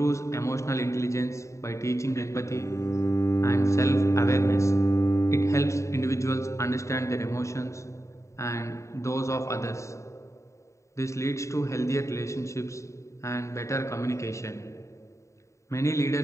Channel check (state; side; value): late; right; 0.14 ms